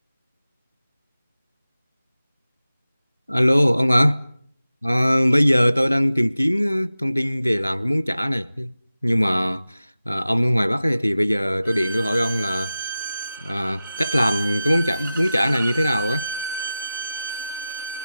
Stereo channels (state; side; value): inverted; both; correlation -0.95